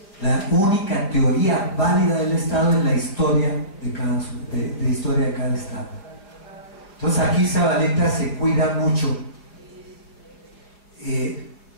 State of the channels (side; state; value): right; late; 5.0 ms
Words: la única teoría válida del Estado es la historia de historia de cada Estado. Entonces aquí Zavaleta se cuida mucho